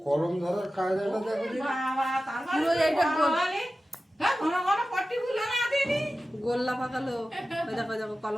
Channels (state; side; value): normal; both; correlation 0.94